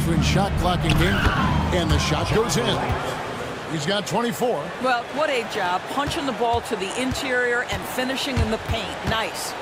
shot clock and game. And the shot goes in. He's got 24. Well, what a job. Punching the ball to the interior and finishing in the paint. Nice.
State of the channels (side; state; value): both; identical; correlation 1.00